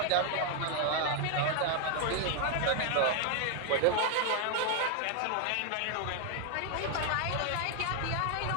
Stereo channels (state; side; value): different; both; correlation 0.00